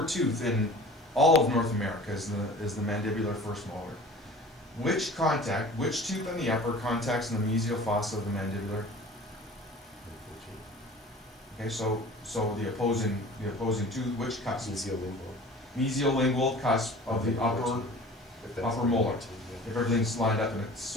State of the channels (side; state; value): both; normal; correlation 0.43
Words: tooth in all of North America is the mandibular first molar. Which tooth on the upper contacts in the mesial fossa of the mandibular? Okay, so the opposing tooth, which cusp? Mesial-lingual cusp of the upper molar. If everything's lined up and it's